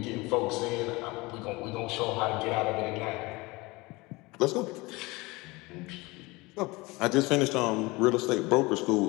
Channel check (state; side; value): quieter; right; 23.3 dB